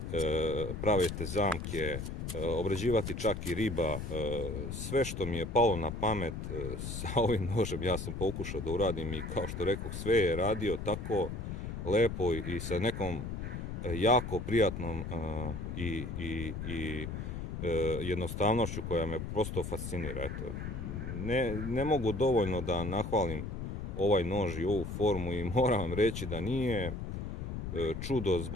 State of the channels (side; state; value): left; noise; rumble, 5 dB below the sound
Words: praviti zamke, obrađivati čak i riba. Sve što mi je palo na pamet sa ovim nožem ja sam pokušao da uradim i kao što rekoh, sve je radio tako lepo i sa nekom jako prijatnom i jednostavnošću koja me prosto fascinira. Eto, ne mogu dovoljno da nahvalim ovaj nož i ovu formu i moram vam reći da nije čudo